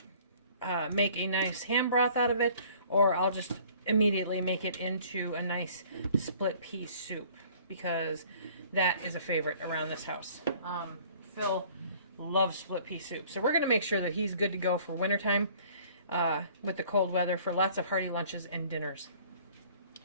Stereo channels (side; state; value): both; inverted; correlation -0.53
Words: make a nice ham broth out of it, or I'll just immediately make it into a nice split pea soup, because that is a favorite around this house. Phil loves split pea soup, so we're going to make sure that he's good to go for wintertime with the cold weather for lots of hearty lunches and dinners.